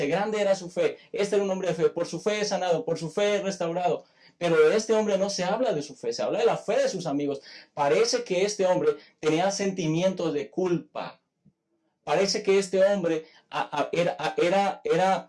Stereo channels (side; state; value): both; identical; correlation 1.00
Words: grande era su fe, este era un hombre de fe, por su fe es sanado, por su fe es restaurado. Pero de este hombre no se habla de su fe, se habla de la fe de sus amigos. Parece que este hombre tenía sentimientos de culpa. Parece que este hombre